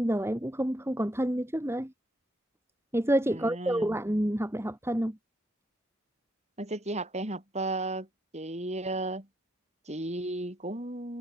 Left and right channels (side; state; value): both; normal; correlation 0.77